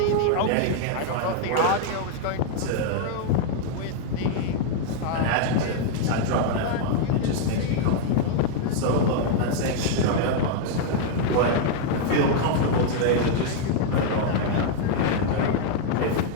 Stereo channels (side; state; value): both; different; correlation 0.00